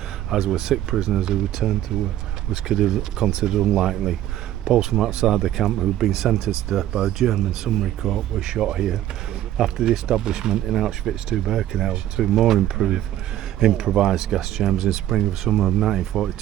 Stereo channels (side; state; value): left; quieter; 13.0 dB